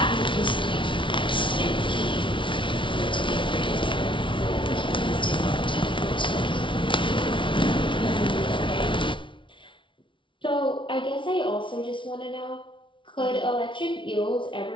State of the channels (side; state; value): right; late; 0.24 ms